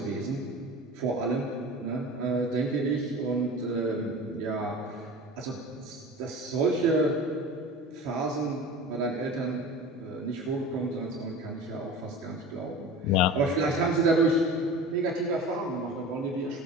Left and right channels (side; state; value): both; normal; correlation 0.35